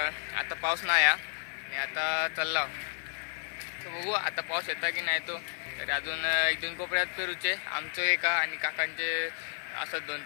आता पाऊस नाही आणि आता चालला. तर बघू आता पाऊस येता की नाही तो. तर अजून एक दोन कोपऱ्यात पेरूचे, आमचं एका आणि काकांचे असत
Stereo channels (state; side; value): silent; right; 57 dB below the other